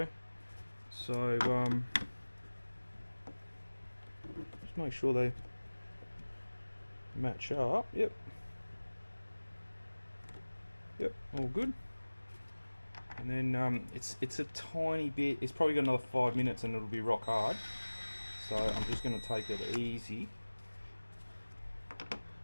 So, just make sure they match up. Yep. Yep, all good. And then it's a tiny bit, it's probably got another 5 minutes and it'll be rock hard. So I'm just going to take it easy.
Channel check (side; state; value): both; inverted; correlation -1.00